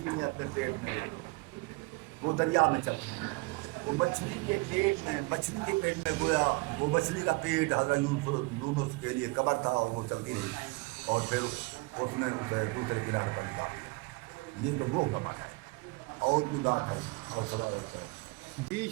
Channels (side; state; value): left; quieter; 26.4 dB